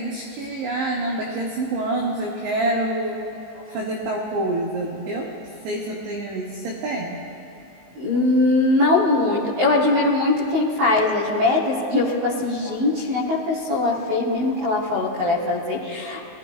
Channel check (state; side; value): late; left; 19 ms